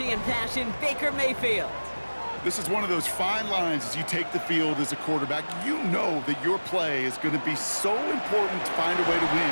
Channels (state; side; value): inverted; both; correlation -1.00